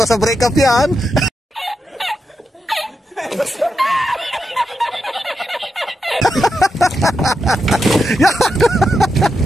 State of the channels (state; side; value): normal; both; correlation 0.86